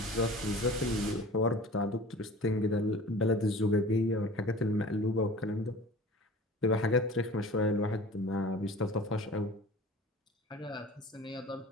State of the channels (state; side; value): normal; both; correlation 0.42